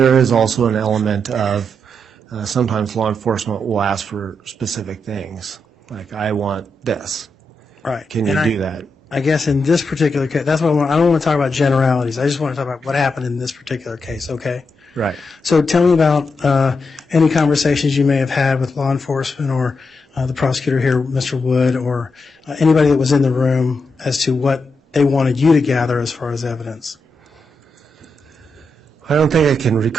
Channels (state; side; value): normal; both; correlation 0.84